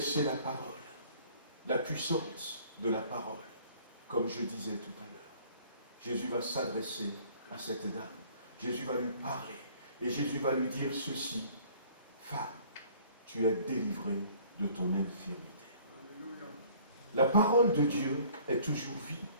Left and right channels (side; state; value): both; inverted; correlation -0.54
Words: la parole, la puissance de la parole, comme je disais tout à l'heure. Jésus va s'adresser à cette dame. Jésus va lui parler. Et Jésus va lui dire ceci, femme, tu es délivrée de ton infirmité. La parole de Dieu est toujours vie.